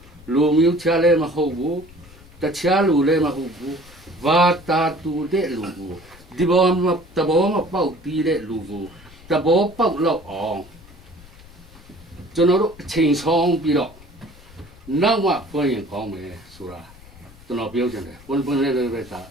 မျိုးချလည်းမဟုတ်ဘူးတခြားလူလည်းမဟုတ်ဘူးဘာတာတူတဲ့လူကိုဒီဘောမတဘောမပေါက်ပြီးတဲ့လူကိုတဘောပေါက်လောက်အောင်ကျွန်တော်တို့အချိန်ဆောင်ပြီးတော့နောက်မှဖွင့်ရင်ကောင်းမယ်ဆိုတာကျွန်တော်ပြောချင်တယ်ပွင့်လေးပဲသာ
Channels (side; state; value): left; noise; rumble, 22 dB below the sound